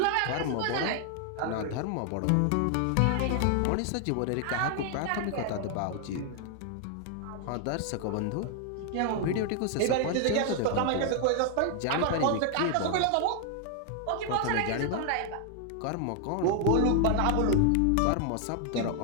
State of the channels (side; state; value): both; different; correlation 0.00